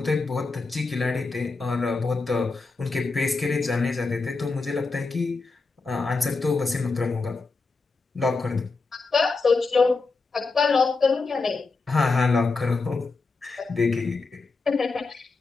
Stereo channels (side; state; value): right; quieter; 4.0 dB